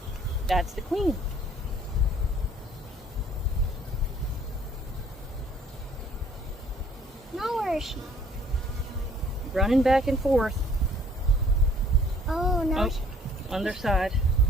That's the queen. Now where is she? Running back and forth. Oh, no. On their side.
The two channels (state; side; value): normal; both; correlation 0.57